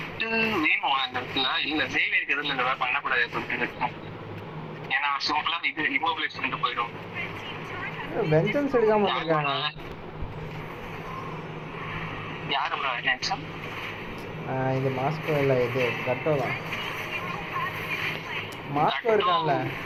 வேணும் அந்த இடத்துல. இல்ல சேவியருக்கு எதுவும் இந்த மாதிரி பண்ணக்கூடாது அப்படின்னு இருக்கும். ஏன்னா சிம்பிளா இது இமோபிலைஸ் பண்ணிட்டு போயிடும். வெஞ்சன்ஸ் எடுக்காம வந்திருக்காங்க. யாரு ப்ரோ வெஞ்சன்ஸ்? இது மாஸ்கோ இல்லை, இது கட்டோ தான். மாஸ்கோ இருக்கான்ல,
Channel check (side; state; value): both; identical; correlation 1.00